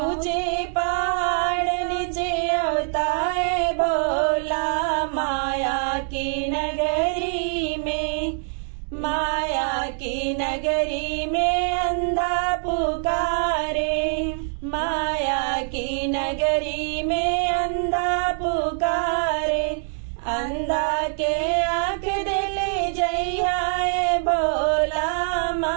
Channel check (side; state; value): left; silent; digital silence